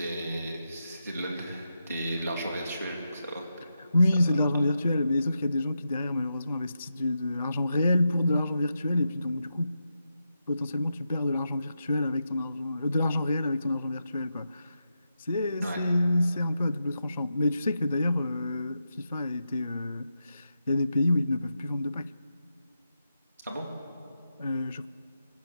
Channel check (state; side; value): inverted; both; correlation -0.87